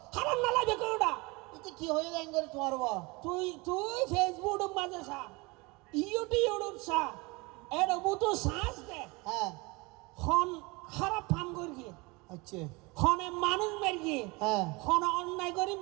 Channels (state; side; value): quieter; left; 25.6 dB